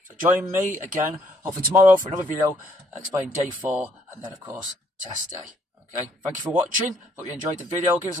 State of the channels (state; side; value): normal; both; correlation 0.67